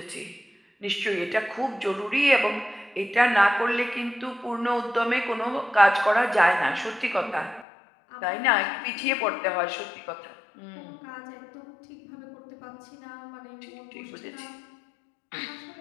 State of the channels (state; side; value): drops out; right; at 7.7 s